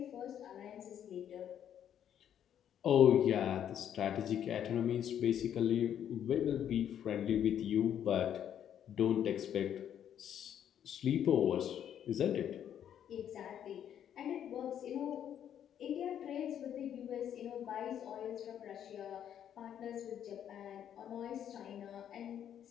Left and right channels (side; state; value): right; quieter; 9.7 dB